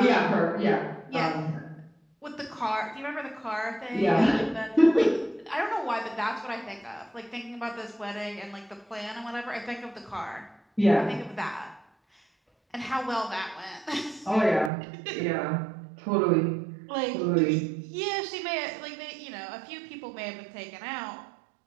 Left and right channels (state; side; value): drops out; left; at 14.7 s